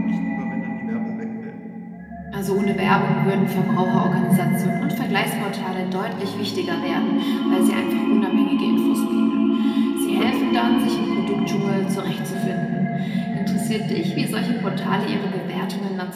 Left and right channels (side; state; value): both; identical; correlation 1.00